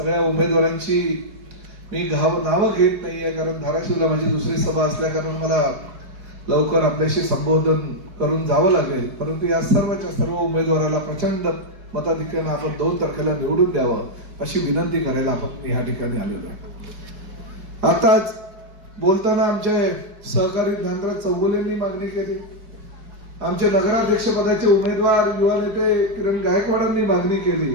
उमेदवारांची मी नावं घेत नाहीये, कारण धाराशिवला माझी दुसरी सभा असल्या कारण मला लवकर आपल्याशी संबोधन करून जावं लागेल। परंतु या सर्वच्या सर्व उमेदवाराला प्रचंड मताधिक्याने आपण 2 तारखेला निवडून द्यावं अशी विनंती करायला आपण या ठिकाणी आलेलो आहे। आताच बोलताना आमचे सहकारी ज्ञानराज चौगुलेंनी मागणी केली, आमचे नगराध्यक्ष पदाचे उमेदवार युवा नेते किरण गायकवाडांनी मागणी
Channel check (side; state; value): left; late; 4.8 ms